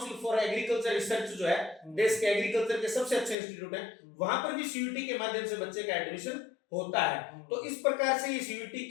for agriculture research जो है, देश के एग्रीकल्चर के सबसे अच्छे इंस्टीट्यूट है, वहां पर भी सीयूटी के माध्यम से बच्चे का एडमिशन होता है। तो इस प्रकार से ये सीयूटी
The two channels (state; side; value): drops out; right; at 3.4 s